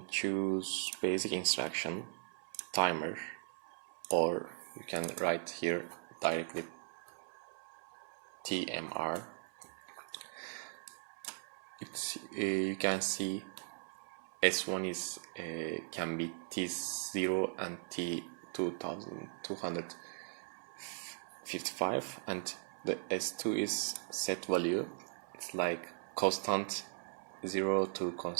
choose basic instruction, timer, or you can write here directly TMR. You can see S1 is can be T0 and T2255, and the S2 is set value. It's like constant 0 to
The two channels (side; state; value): left; silent; 52 dB below the other